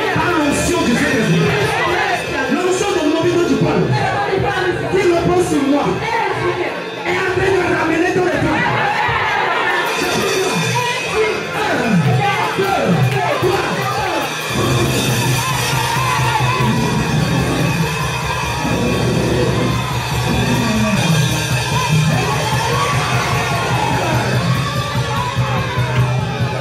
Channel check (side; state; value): both; identical; correlation 1.00